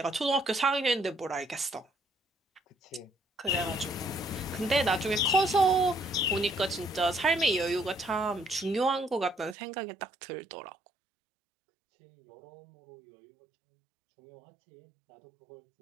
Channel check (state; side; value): drops out; left; at 9.6 s